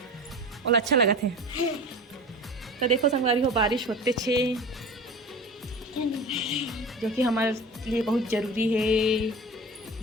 और अच्छा लगा थे। तो देखो संगवारी हो बारिश होते छे जो कि हमारे लिए बहुत जरूरी है,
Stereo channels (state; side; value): normal; both; correlation 0.34